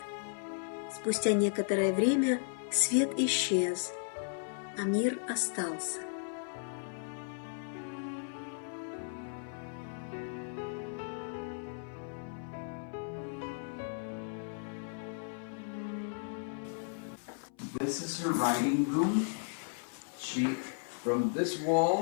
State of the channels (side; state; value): right; silent; 54 dB below the other